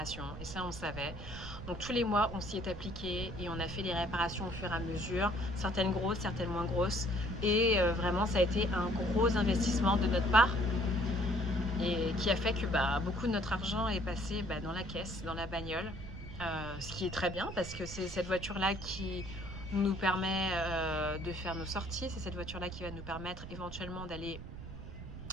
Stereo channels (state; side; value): noise; right; rumble, 11 dB below the sound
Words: et ça on savait. Donc tous les mois on s'y est appliqué et on a fait les réparations au fur et à mesure, certaines grosses, certaines moins grosses, et vraiment ça a été un gros investissement de notre part, et qui a fait que beaucoup de notre argent est passé dans la caisse, dans la bagnole, ce qui est très bien parce que c'est cette voiture là qui nous permet de faire nos sorties, c'est cette voiture là qui va nous permettre éventuellement d'aller